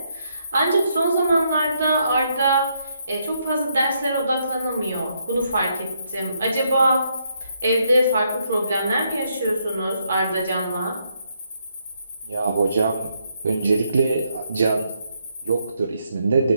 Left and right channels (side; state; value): both; inverted; correlation -0.76